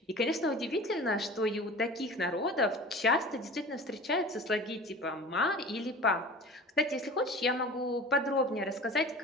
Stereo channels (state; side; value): normal; both; correlation 0.39